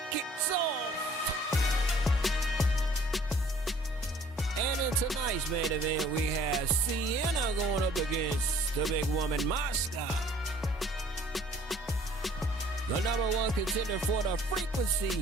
kicks off. And in tonight's main event, we have Sienna going up against the big woman, Mashka. The #1 contender for the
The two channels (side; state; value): both; normal; correlation 0.55